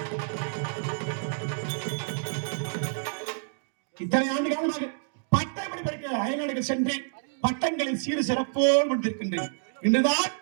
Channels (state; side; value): silent; left; digital silence